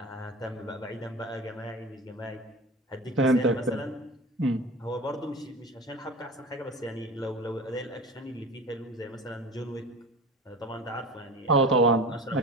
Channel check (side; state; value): both; normal; correlation 0.33